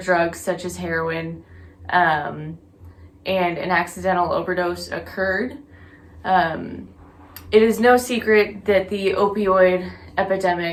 drugs such as heroin um, and an accidental overdose occurred? Um, it is no secret that the opioid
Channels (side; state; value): both; identical; correlation 1.00